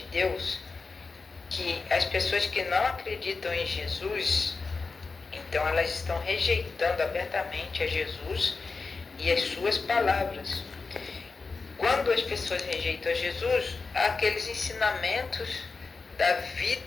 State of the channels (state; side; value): quieter; right; 4.3 dB